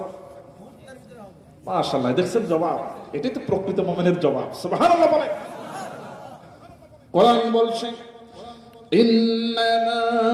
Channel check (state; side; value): identical; both; correlation 1.00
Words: মাশাআল্লাহ, দেখছেন জবাব? এটাই তো প্রকৃত মুমিনের জবাব। সুবহানাল্লাহ বলে। কোরআন বলছে ইন্নামা